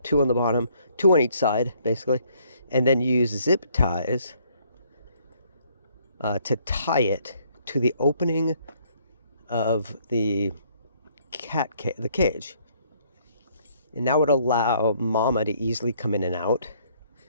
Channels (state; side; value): inverted; both; correlation -0.65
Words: 2 on the bottom, 2 on each side, basically, and then use zip ties to tie it to the opening of the the cage. And that would allow mama to easily come in and out,